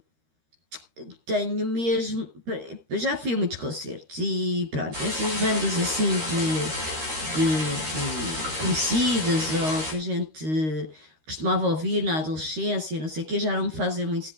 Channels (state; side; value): late; left; 13 ms